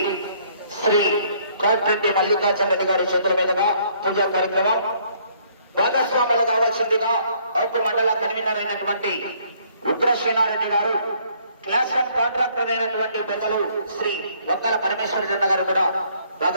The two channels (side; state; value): both; inverted; correlation -0.64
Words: కోట్రెడ్డి మల్లికార్జున రెడ్డి గారి చేతుల మీదుగా పూజా కార్యక్రమం భాగస్వాములు కావాల్సిందిగా ఔపు మండల కన్వీనర్ అయినటువంటి ఉగ్రసేనారెడ్డి గారు, క్లాస్ వన్ కాంట్రాక్టర్ అయినటువంటి పెద్దలు శ్రీ వంకల పరమేశ్వర జన్న గారు కూడా